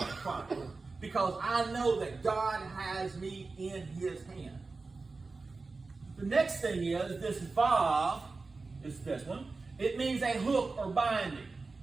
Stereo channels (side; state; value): left; quieter; 3.9 dB